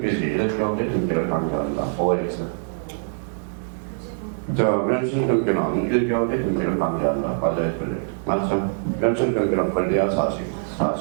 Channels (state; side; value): silent; left; 61 dB below the other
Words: 이렇게 경제 등기를 강조한다. OX. 자, 멸실 등기는 1개월의 등기를 강조한다. 맞아요, 틀려요. 맞죠? 멸실 등기는 권리와 사실.